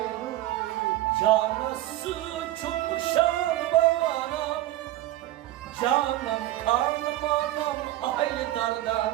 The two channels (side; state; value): left; quieter; 15.1 dB